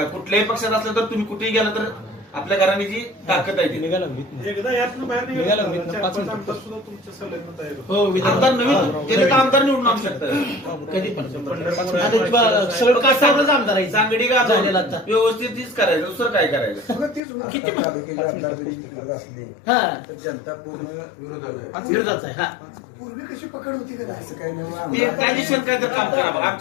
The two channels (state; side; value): drops out; right; at 17.2 s